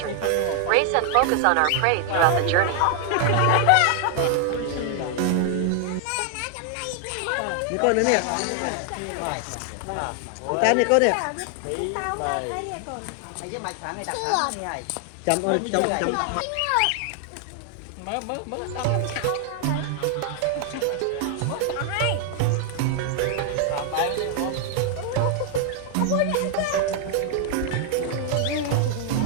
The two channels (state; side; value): different; both; correlation 0.00